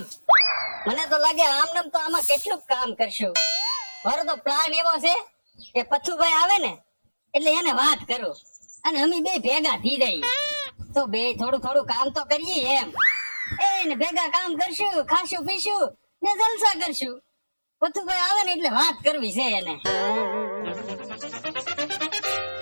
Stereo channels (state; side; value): inverted; both; correlation -1.00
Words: મને તો લાગે આમ તો આમાં કેટલું કામ કરશું. મારો તો પ્લાન એવો છે કે પથ્થુભાઈ આવે ને એટલે એને વાત કરું અને અમે બે ભેગા થઈ જઈએ તો બે થોડું થોડું કામ તો કરીએ એમ. એને ભેગા કામ કરશું, ખાશું પીશું ને જલસા કરશું. પથ્થુભાઈ આવે ને એટલે વાત કરવી છે એને.